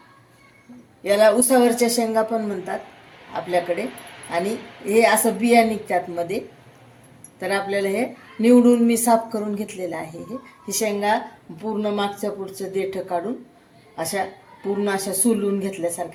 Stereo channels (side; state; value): both; identical; correlation 1.00